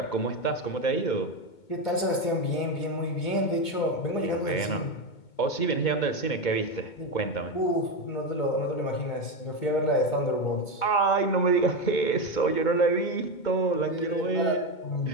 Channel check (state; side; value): late; right; 2.2 ms